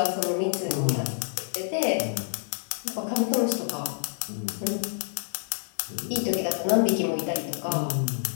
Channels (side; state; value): right; silent; digital silence